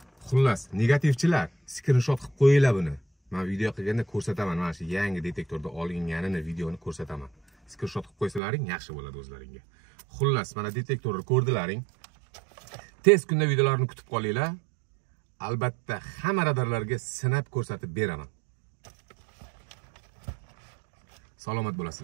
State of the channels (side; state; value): left; drops out; at 8.4 s